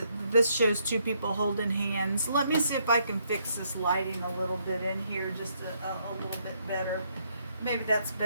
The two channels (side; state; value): both; inverted; correlation -0.73